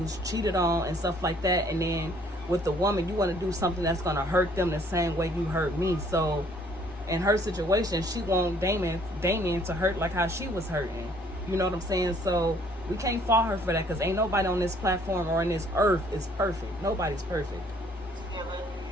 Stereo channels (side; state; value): both; normal; correlation 0.61